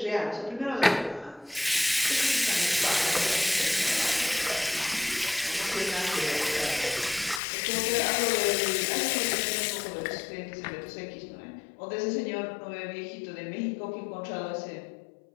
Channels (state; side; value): drops out; right; at 7.4 s